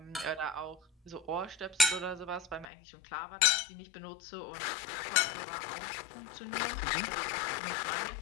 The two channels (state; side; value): drops out; right; at 2.7 s